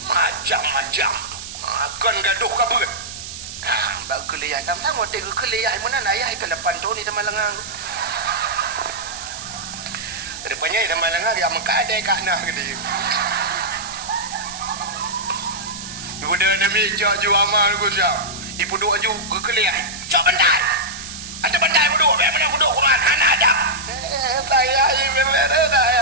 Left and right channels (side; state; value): right; noise; hiss, 10 dB below the sound